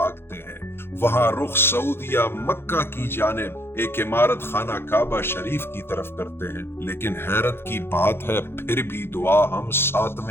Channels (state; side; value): late; right; 0.11 ms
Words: ہیں، وہاں رخ سعودیہ مکہ کی جانب ایک عمارت خانہ کعبہ شریف کی طرف کرتے ہیں، لیکن حیرت کی بات ہے پھر بھی دعا ہم